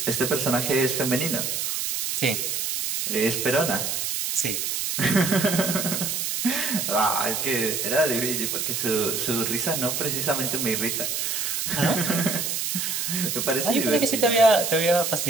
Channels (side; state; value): right; noise; hiss, 1 dB below the sound